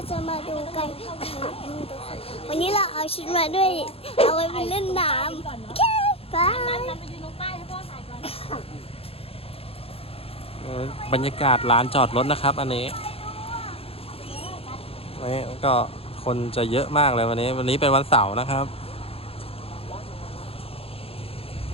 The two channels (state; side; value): late; right; 0.28 ms